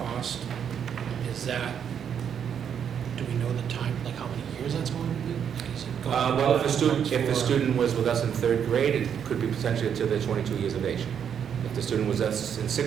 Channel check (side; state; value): left; quieter; 8.1 dB